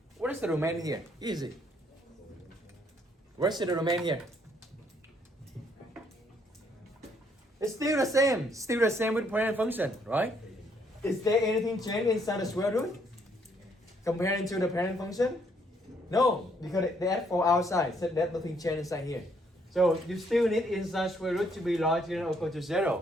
What is the domain here? Easy. Where's the domain here? It's still the same. Still the same with parent function, right? Is there anything changed inside the square root? Comparing to the parent function? No, because they add 4 outside, so that nothing changed inside here. So you still need inside square root to be larger than or equal to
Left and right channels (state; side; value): normal; both; correlation 0.69